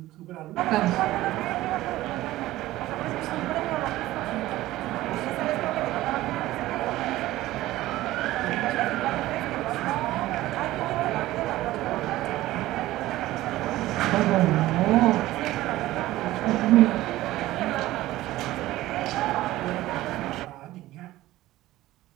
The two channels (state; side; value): quieter; left; 16.3 dB